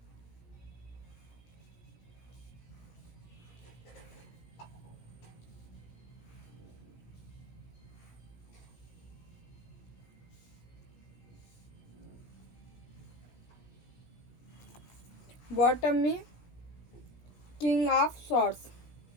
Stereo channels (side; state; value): right; late; 17 ms